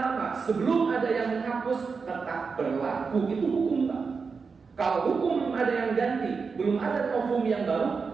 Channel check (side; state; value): left; quieter; 5.1 dB